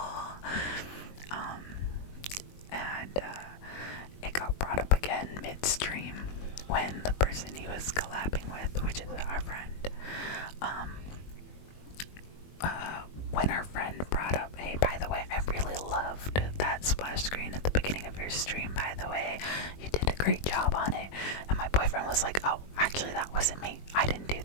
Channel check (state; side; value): late; right; 21 ms